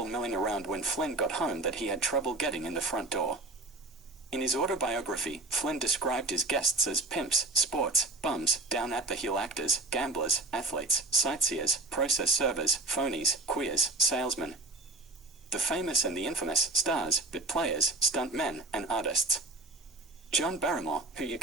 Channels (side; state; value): left; quieter; 3.0 dB